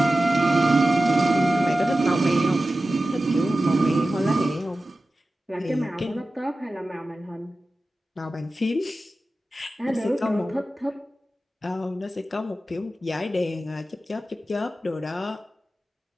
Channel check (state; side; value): normal; both; correlation 0.94